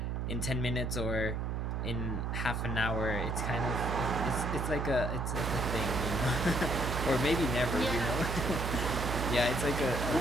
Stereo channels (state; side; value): noise; right; hum, 1 dB below the sound